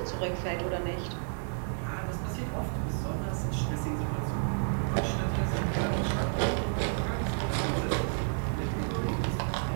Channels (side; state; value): left; silent; digital silence